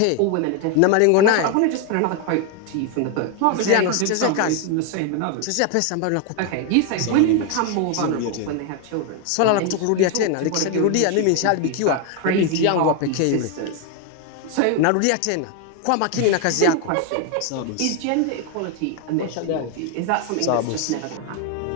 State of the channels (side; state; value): both; different; correlation 0.01